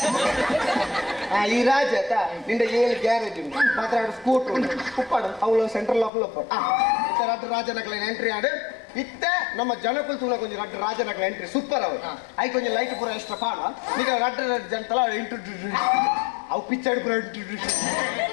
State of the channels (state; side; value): drops out; right; at 6.1 s